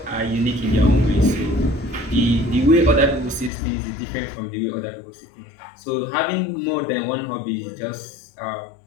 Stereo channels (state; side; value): drops out; right; at 3.5 s